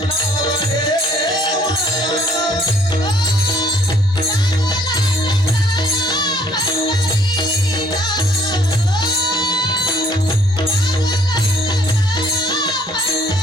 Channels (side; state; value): both; normal; correlation 0.61